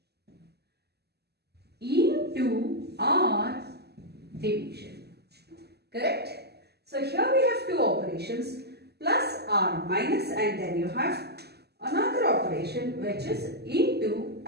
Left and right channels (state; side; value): late; left; 0.47 ms